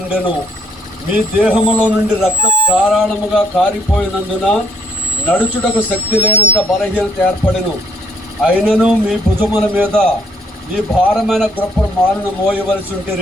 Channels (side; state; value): both; normal; correlation 0.66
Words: ఉండెను. మీ దేహములో నుండి రక్తం ధారాళముగా కారిపోయినందున నడుచుటకు శక్తి లేనంత బలహీనత ఏర్పడెను. అయినను మీ భుజముల మీద ఈ భారమైన గొప్ప మాలను మోయవలసి